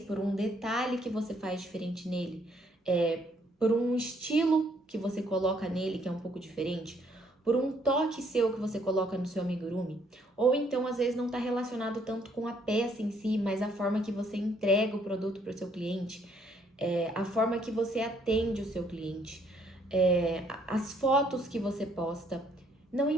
por um detalhe que você faz diferente nele, por um estilo que você coloca nele que é um pouco diferente, por um toque seu que você coloca no seu amigurumi, ou então às vezes não está relacionado tanto com a peça em si, mas a forma que você entrega o produto para o seu cliente, a forma que você atende o seu cliente, as fotos que você posta. Não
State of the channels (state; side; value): normal; both; correlation 0.67